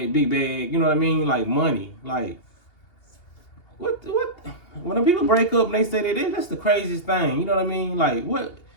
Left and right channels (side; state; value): right; late; 2.8 ms